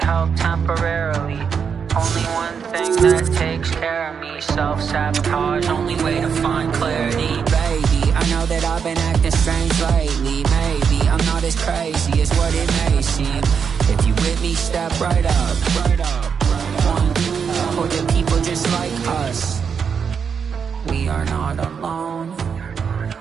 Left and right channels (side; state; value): left; quieter; 6.6 dB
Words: help temporarily. Only one thing that takes care of me. Self-sabotage, only way to find clarity. Baby, I know that I've been acting strange lately. Maybe I'm not as crazy as what it may seem. If you with me, step right up. One, or the people just like us. We are not alone.